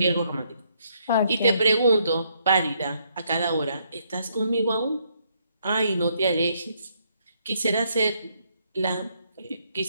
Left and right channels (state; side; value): inverted; both; correlation -0.72